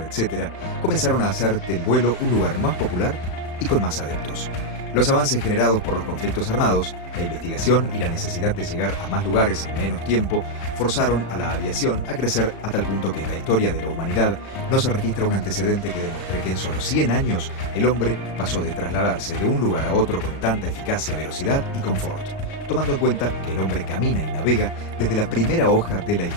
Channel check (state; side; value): late; right; 36 ms